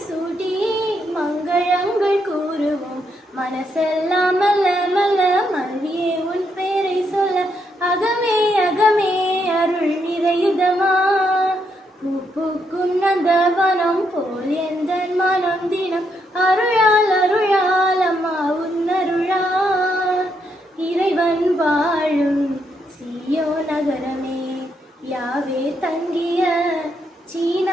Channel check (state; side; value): normal; both; correlation 0.78